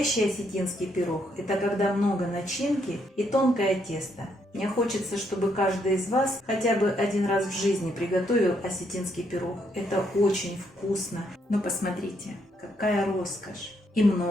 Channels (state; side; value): normal; both; correlation 0.74